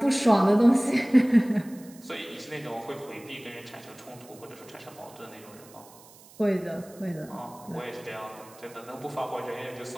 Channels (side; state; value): right; noise; hiss, 23 dB below the sound